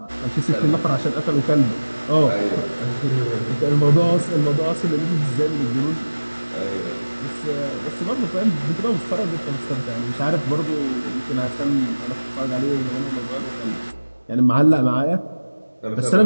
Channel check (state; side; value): inverted; both; correlation -1.00